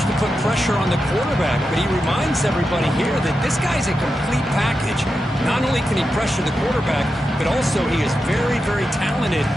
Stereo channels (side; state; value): both; normal; correlation 0.89